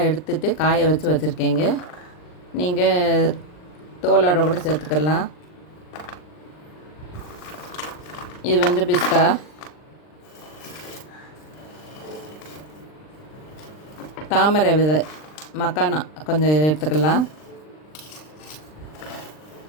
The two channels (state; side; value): late; right; 39 ms